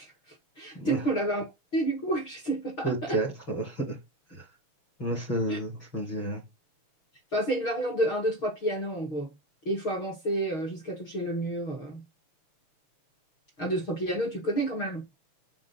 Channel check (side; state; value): right; late; 6.4 ms